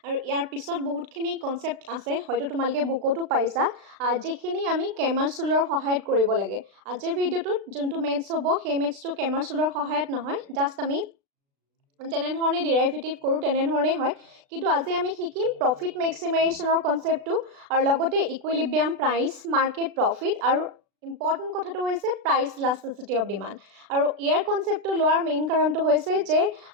আৰু ইয়াৰ পিছত বহুতখিনি কনচেপ্ট আছে, হয়তো তোমালোকে বুকতো পাইছা, যিখিনি আমি কেমাৰ ৰুলৰ সহায়ত কৰিব লাগে। আজিৰ ভিডিঅ'টোত যোনটো মেথছ হ'ব সেই মেথছটো কেমাৰ ৰুলৰ সহায়ত নহয়, জাষ্ট আমি যেনেধৰণে ডিৰাইভেটিভ কৰোঁ তেনেধৰণেই হয়, কিন্তু আজি আমি শিকিম প্ৰফিট মেক্সিমাইজেশ্যনৰ কনচেপ্টটো আৰু লগতে ইকুইলিব্ৰিয়াম প্ৰাইচ, মাৰ্কেট প্ৰফিট আৰু ইম্পৰ্টেণ্ট কথাটো হৈছে প্ৰাইচ ইলাষ্টিচিটি অফ ডিমাণ্ড। আৰু ইয়াৰ কনচেপ্টটো লোৱাৰ মেইন কাৰণটো হৈছে যে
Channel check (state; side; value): late; left; 36 ms